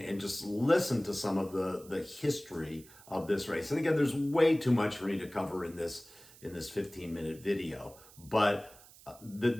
just listen to some of the history of this race. And again, there's way too much for me to cover in this 15-minute video, but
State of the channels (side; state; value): right; noise; hiss, 22 dB below the sound